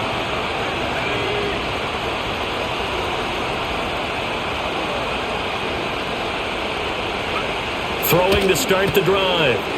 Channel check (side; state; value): both; identical; correlation 1.00